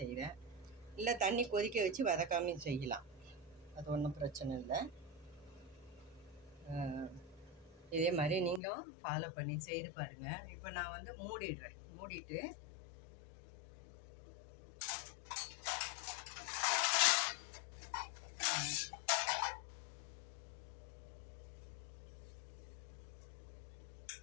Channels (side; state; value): right; drops out; at 8.6 s